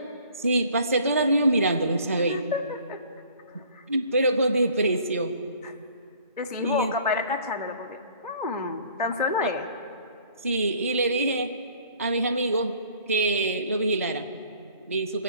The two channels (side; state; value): both; inverted; correlation -0.54